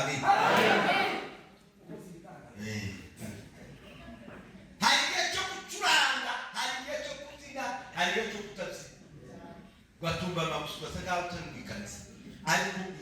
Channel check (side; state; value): both; identical; correlation 1.00